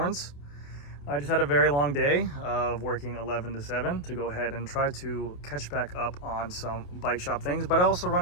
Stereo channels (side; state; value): right; late; 28 ms